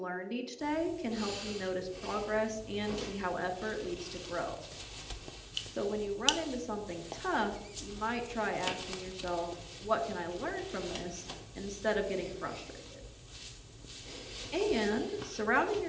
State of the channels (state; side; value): identical; both; correlation 1.00